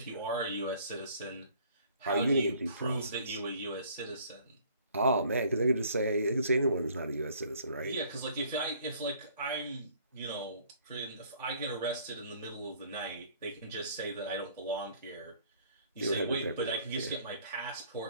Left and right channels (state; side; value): inverted; both; correlation -0.57